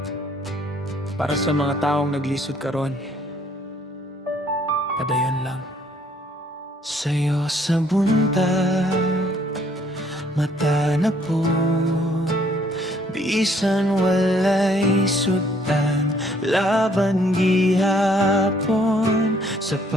Para sa mga taong naglisod karon, padayon lang. Sa'yo sa buntag, mata na po, bisan walay sutan, laban gihapon,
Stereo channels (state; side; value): normal; both; correlation 0.63